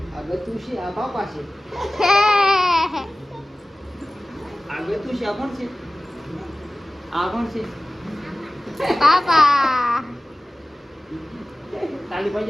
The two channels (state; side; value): normal; both; correlation 0.97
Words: આગતું છે આ પાપા છે. હે આગતું છે આ કોણ છે? આ કોણ છે? પાપા. તાલી